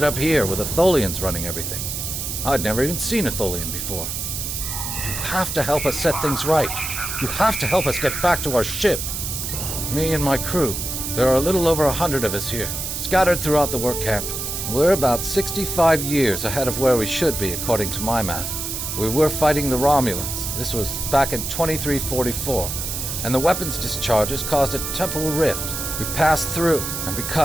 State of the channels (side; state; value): right; noise; hiss, 4 dB below the sound